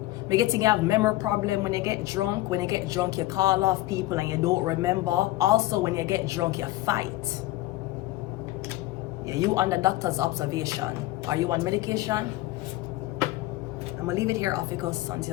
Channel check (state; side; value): quieter; right; 17.6 dB